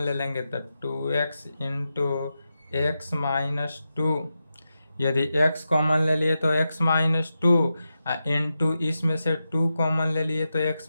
लेंगे तो 2x इंटू एक्स माइनस 2, यदि x कॉमन ले लिए तो x माइनस 2 इंटू इसमें से 2 कॉमन ले लिए तो x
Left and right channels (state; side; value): inverted; both; correlation -0.89